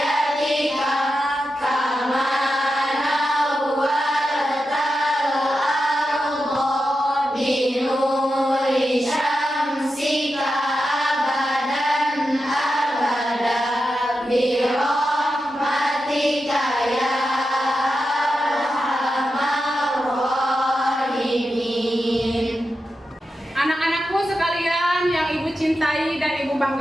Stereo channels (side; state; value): both; normal; correlation 0.89